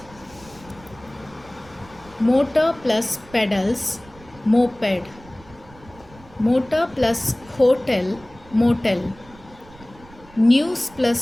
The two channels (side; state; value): right; noise; rumble, 23 dB below the sound